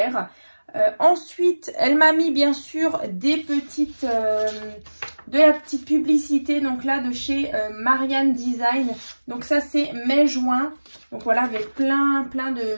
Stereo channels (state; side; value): inverted; both; correlation -1.00